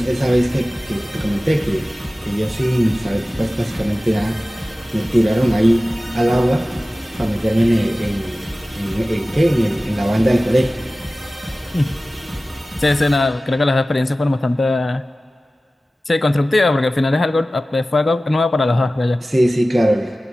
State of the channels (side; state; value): both; normal; correlation 0.96